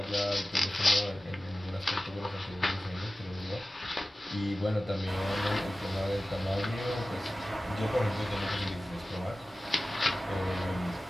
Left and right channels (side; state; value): both; normal; correlation 0.96